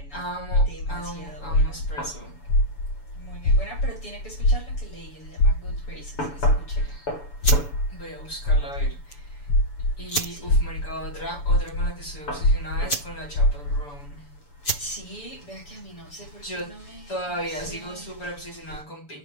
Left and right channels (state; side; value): late; right; 6.9 ms